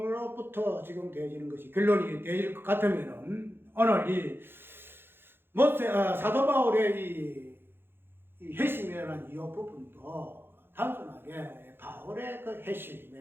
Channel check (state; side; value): late; left; 0.10 ms